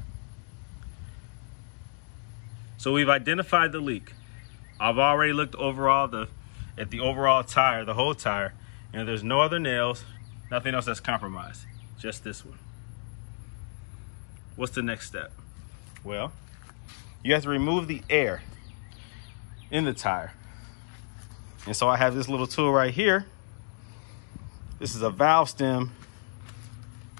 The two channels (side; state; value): right; silent; digital silence